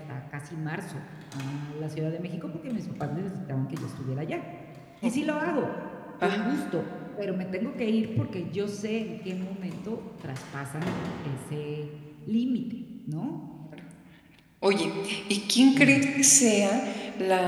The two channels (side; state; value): both; identical; correlation 1.00